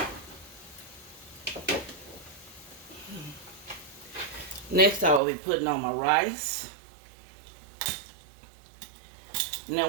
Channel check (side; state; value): left; drops out; at 5.2 s